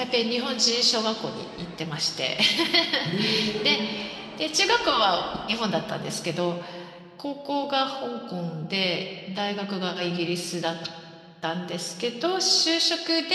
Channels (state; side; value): identical; both; correlation 1.00